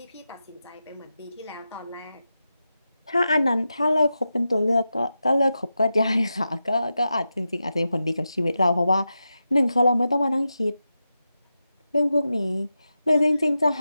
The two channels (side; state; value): both; inverted; correlation -0.90